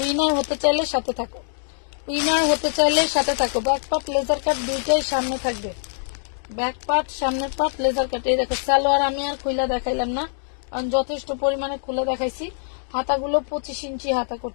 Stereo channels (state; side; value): silent; right; 63 dB below the other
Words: উইনার হতে চাইলে সাথে থাকো, উইনার হতে চাইলে সাথে থাকো। ব্যাক পার্ট লেজার কাট দুইটাই সামনে থাকবে, ব্যাক পার্ট সামনের পার্ট লেজার কাট। এই দেখো সালোয়ার আমি আর খুলে দেখাইলাম না, কারণ যথেষ্ট পরিমাণে খুলে দেখাইছি। হাতাগুলো 25 ইঞ্চি হাতা